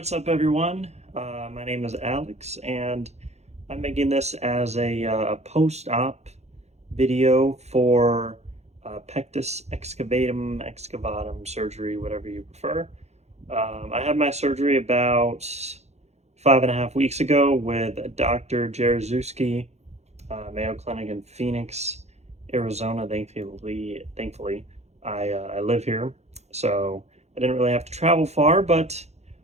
up, everyone? My name is Alex, and I'm making this as a post-op video for Pectus Excavatum surgery, whatever you prefer. I had my surgery about 5.5 weeks ago with Dr. Jaroszewski, Mayo Clinic in Phoenix, Arizona. Thankfully, I live here, so I didn't really have to travel far, but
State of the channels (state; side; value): late; left; 0.32 ms